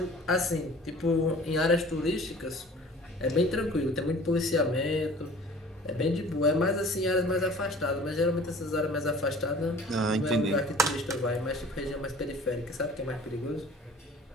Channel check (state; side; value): normal; both; correlation 0.47